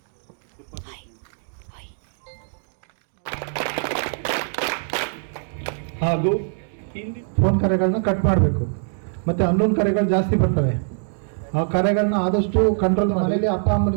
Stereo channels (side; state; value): left; silent; digital silence